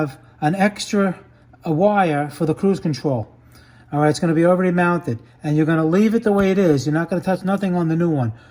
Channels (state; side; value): identical; both; correlation 1.00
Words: an extra wire for the cruise control. All right, it's going to be already mounted, and you're going to leave it the way it is. You're not going to touch nothing on the new one.